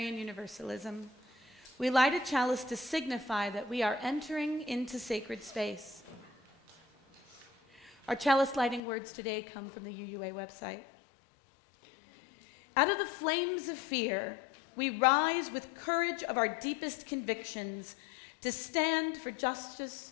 Universalism. We light a chalice to signify that we are entering into sacred space. Our chalice lighting words today come from the UUA website. Out of the flames of fear, we rise with courage of our deepest convictions to stand for justice,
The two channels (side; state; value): right; drops out; at 8.8 s